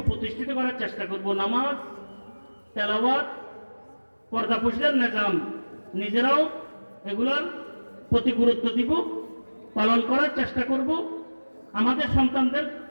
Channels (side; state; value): both; inverted; correlation -1.00